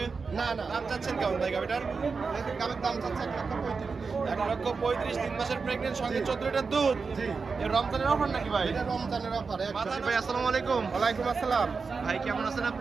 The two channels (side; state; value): left; quieter; 4.8 dB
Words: না না, দাম চাচ্ছেন কেমন ভাই গাবিটার? গাবের দাম চাচ্ছে 1,35,000। 1,35,000, 3 মাসের প্রেগনেন্ট, সঙ্গে 14 লিটার দুধ। জি, এর রমজানের অফার নাকি ভাই? এটা রমজানের অফার। মাথান ভাই আসসালামু আলাইকুম। ওয়ালাইকুম আসসালাম। ভাই কেমন আছেন